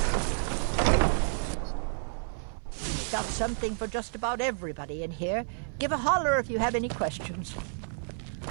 Got something for just about everybody in here. Give a holler if you have any questions.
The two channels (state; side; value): silent; left; digital silence